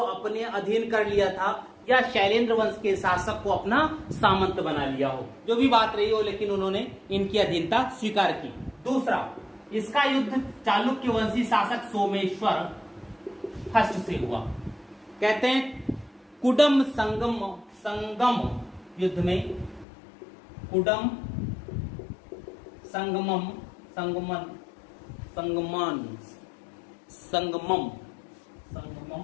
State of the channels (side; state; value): right; drops out; at 19.9 s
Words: अधीन कर लिया था, या शैलेंद्र वंश के शासक को अपना सामंत बना लिया हो, जो भी बात रही हो, लेकिन उन्होंने इनकी अधीनता स्वीकार की। दूसरा, इसका युद्ध चालुक्य वंशी शासक सोमेश्वर फर्स्ट से हुआ। कहते हैं कुडम संगम युद्ध में, कुडम संगमम